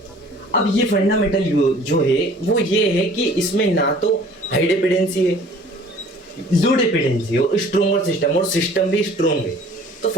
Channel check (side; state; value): both; normal; correlation 0.51